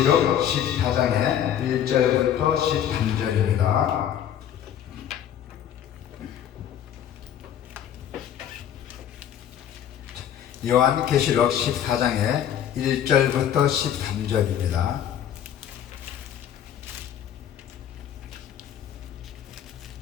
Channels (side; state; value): right; quieter; 10.0 dB